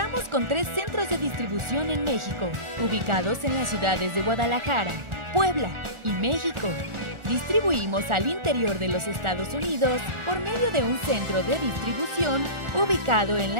con 3 centros de distribución en México, ubicados en las ciudades de Guadalajara, Puebla y México. Distribuimos al interior de los Estados Unidos por medio de un centro de distribución ubicado en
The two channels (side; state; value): left; late; 1.4 ms